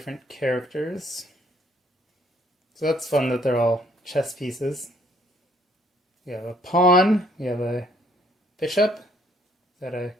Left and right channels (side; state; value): both; normal; correlation 0.64